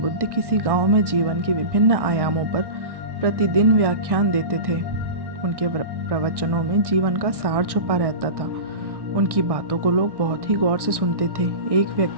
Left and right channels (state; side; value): late; left; 1.1 ms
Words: बुद्ध किसी गांव में जीवन के विभिन्न आयामों पर प्रतिदिन व्याख्यान देते थे। उनके प्रवचनों में जीवन का सार छुपा रहता था। उनकी बातों को लोग बहुत ही गौर से सुनते थे। एक